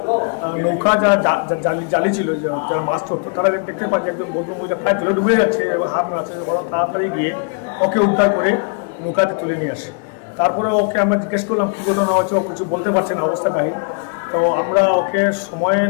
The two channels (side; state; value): right; quieter; 37.4 dB